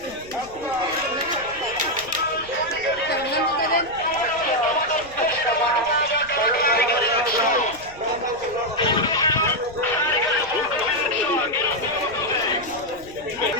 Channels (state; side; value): noise; left; rumble, 21 dB below the sound